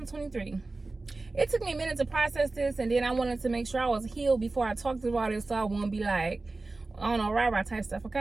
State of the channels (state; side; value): quieter; left; 3.4 dB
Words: It took me a minute to process this, and then I wanted to make sure I was healed before I talked about it, so I won't be like, I don't know, rah-rah type stuff,